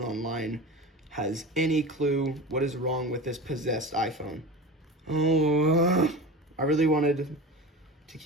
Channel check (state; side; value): normal; both; correlation 0.31